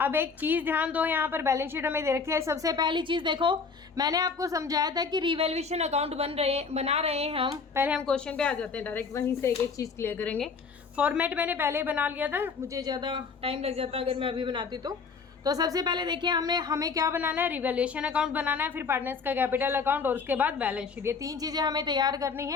एक चीज़ ध्यान दो, यहाँ पर बैलेंस शीट हमें दे रखी है। सबसे पहली चीज़ देखो, मैंने आपको समझाया था कि रिवैल्यूएशन अकाउंट बना रहे हैं हम। पहले हम क्वेश्चन पे आ जाते हैं, डायरेक्ट वहीं से एक एक चीज़ क्लियर करेंगे। फॉर्मेट मैंने पहले ही बना लिया था, मुझे ज़्यादा टाइम लग जाता अगर मैं अभी बनाती तो सबसे पहले देखिए हमें क्या बनाना है, रिवैल्यूएशन अकाउंट बनाना है, फिर पार्टनर्स का कैपिटल अकाउंट और उसके बाद बैलेंस शीट। ये 3 चीज़ें हमें तैयार करनी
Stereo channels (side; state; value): right; quieter; 5.1 dB